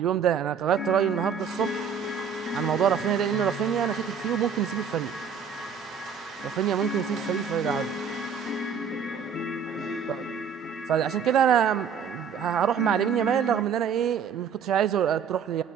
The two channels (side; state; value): left; quieter; 6.7 dB